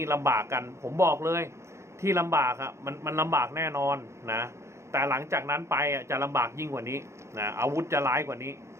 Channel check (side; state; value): left; late; 0.13 ms